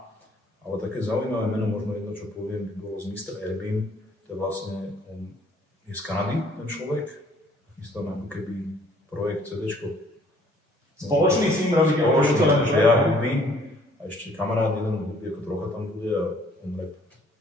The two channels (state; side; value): normal; both; correlation 0.60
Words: Ale také zaujímavé meno, možno jedno, čo poviem, by bolo z Mr. Airbnb, to je vlastne, on je z Kanady, ten človek, chystáme ako keby projekt CDčko. Spoločný s ním robíte? Spoločný, že ja hudby a ešte kamarát jeden hudby, ako trocha tam bude a on rap.